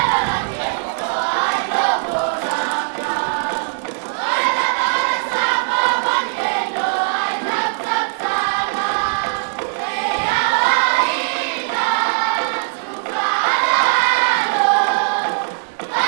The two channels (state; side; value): silent; left; digital silence